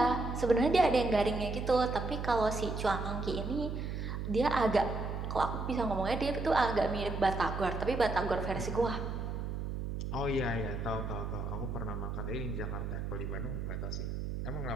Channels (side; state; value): right; noise; hum, 4 dB below the sound